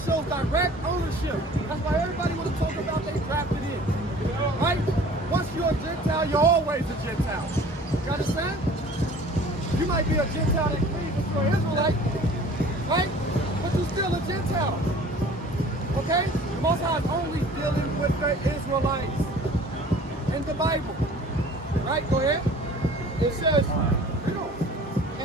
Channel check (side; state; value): both; normal; correlation 0.48